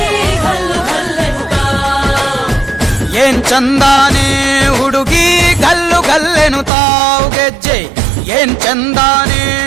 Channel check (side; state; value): left; drops out; at 6.7 s